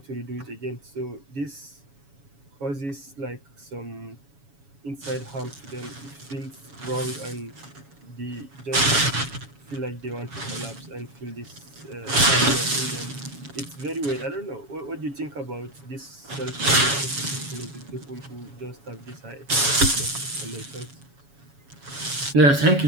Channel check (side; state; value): left; late; 7.2 ms